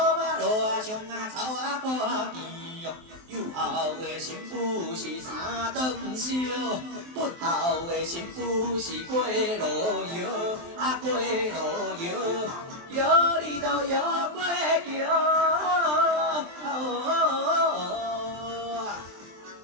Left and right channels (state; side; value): late; left; 23 ms